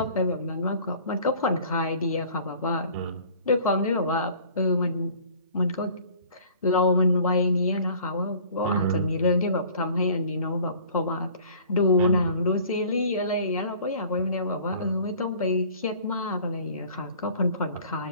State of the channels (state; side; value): inverted; both; correlation -0.50